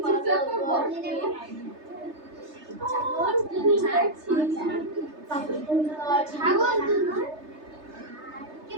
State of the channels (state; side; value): late; left; 3.3 ms